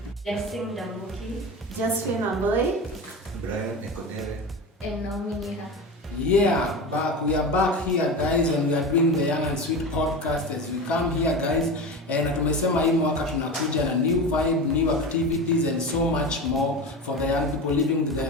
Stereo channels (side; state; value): both; normal; correlation 0.26